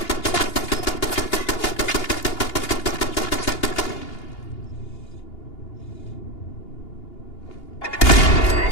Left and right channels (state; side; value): late; right; 2.8 ms